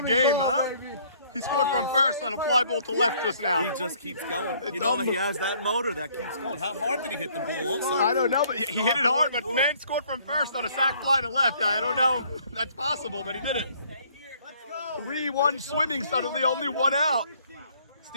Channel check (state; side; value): inverted; both; correlation -0.62